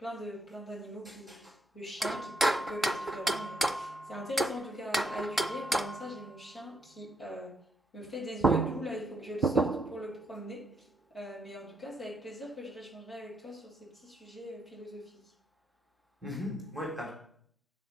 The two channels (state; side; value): normal; both; correlation 0.75